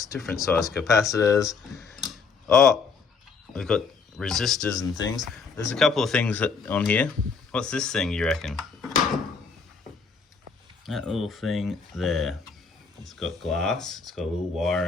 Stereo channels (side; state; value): right; quieter; 5.2 dB